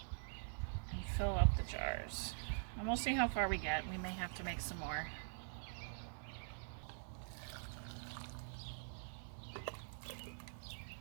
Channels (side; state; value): left; silent; digital silence